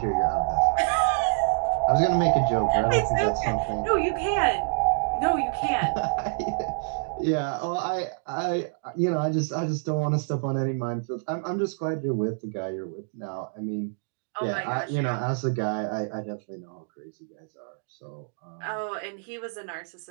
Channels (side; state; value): left; silent; digital silence